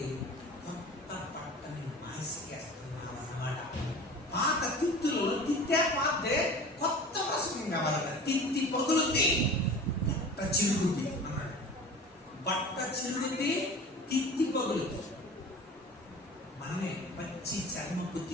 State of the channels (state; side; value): normal; both; correlation 0.38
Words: కొత్త బట్టని మాసికేస్తున్నాం అన్నమాట. పాత తిత్తులో తిత్తే పాతే కొత్త వసతి కావాలట. తిత్తి పగులుద్ది, బట్ట చిరుగుద్ది అన్నాడు. బట్ట చిరుగుద్ది, తిత్తి పగులుద్ది. మనమే పచ్చి చర్మపు